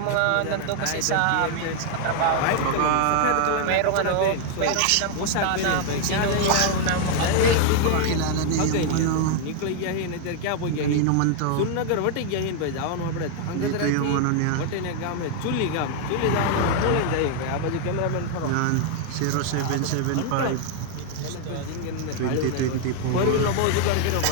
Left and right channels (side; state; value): both; different; correlation 0.00